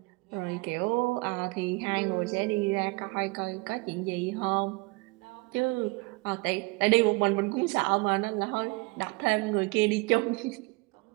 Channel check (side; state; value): left; quieter; 26.2 dB